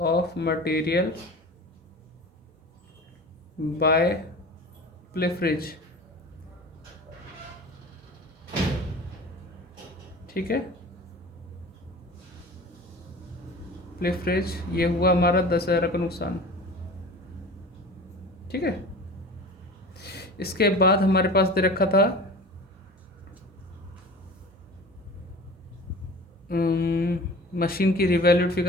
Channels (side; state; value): both; normal; correlation 0.38